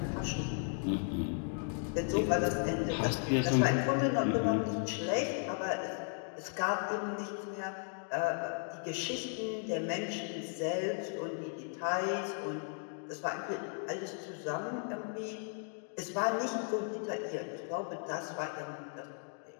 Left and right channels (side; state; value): right; silent; 54 dB below the other